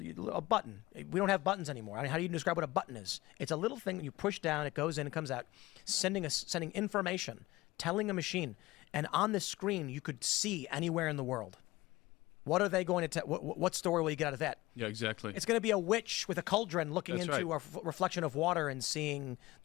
button. We don't have buttons anymore. I mean, how do you describe what a button is? It's a little thing that you push down, it goes in, it comes out, sending information, telling a machine. And on this screen, you could see anywhere in the world. What are they going to tell? What story will you get out of that? Yeah, exactly. It's going to be a witch with a cauldron looking That's into right. a reflection of water and seeing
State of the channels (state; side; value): quieter; right; 19.2 dB